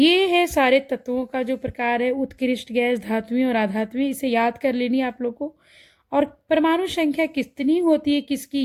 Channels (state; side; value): identical; both; correlation 1.00